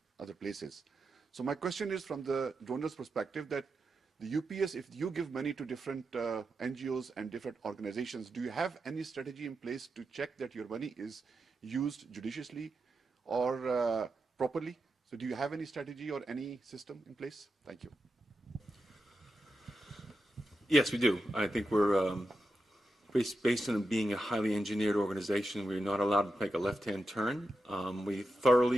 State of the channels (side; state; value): both; normal; correlation 0.88